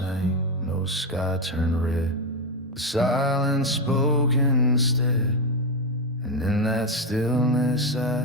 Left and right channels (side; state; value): both; normal; correlation 0.09